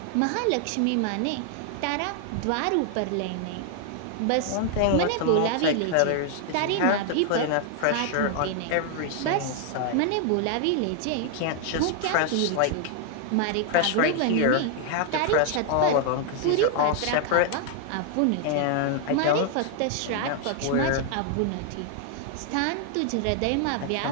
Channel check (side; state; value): both; different; correlation 0.00